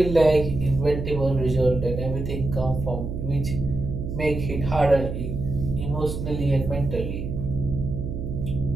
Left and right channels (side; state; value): right; noise; hum, 5 dB below the sound